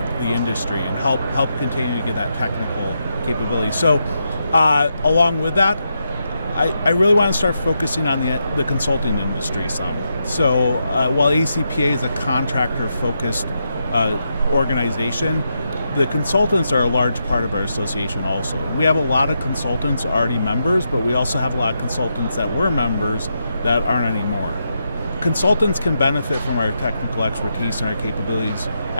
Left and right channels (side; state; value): both; inverted; correlation -0.84